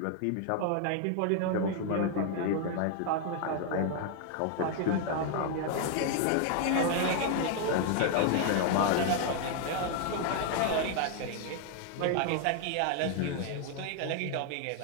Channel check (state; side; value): different; both; correlation 0.00